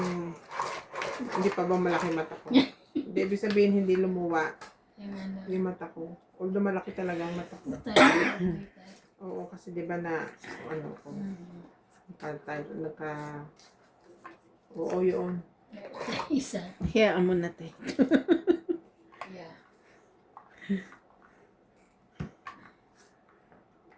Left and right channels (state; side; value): identical; both; correlation 1.00